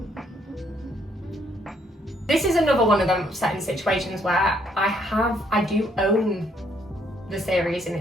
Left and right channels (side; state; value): both; normal; correlation 0.69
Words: This is another one of them upsetting situations where I do own the series in